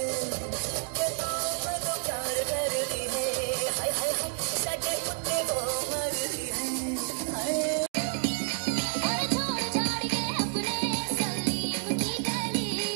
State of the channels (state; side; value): silent; left; 58 dB below the other